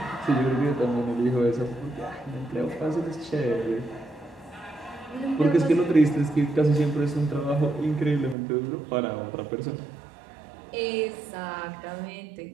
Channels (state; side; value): drops out; left; at 8.3 s